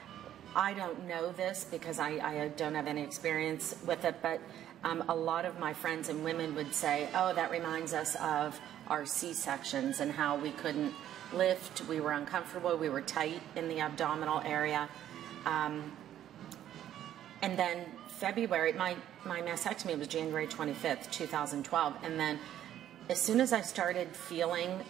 don't know this because I don't have any experience with it, but a lot of my friends and women would say, oh, that reminds us of our C-sections and how we couldn't lift, we were uncomfortable, we were tight in the abdominal area. And then February, my mastectomy was January 25th, 2012. And then as soon as I started feeling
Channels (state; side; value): quieter; left; 11.4 dB